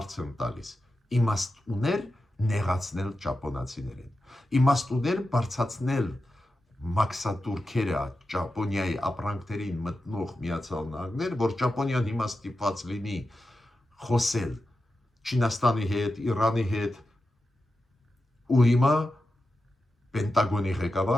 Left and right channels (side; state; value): both; normal; correlation 0.91